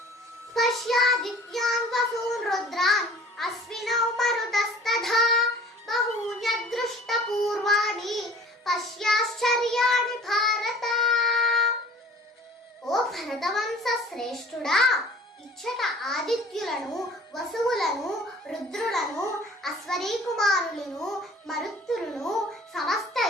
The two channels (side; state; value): both; normal; correlation 0.47